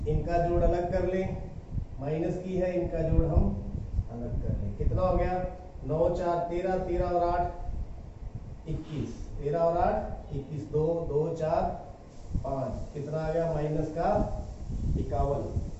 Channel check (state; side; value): identical; both; correlation 1.00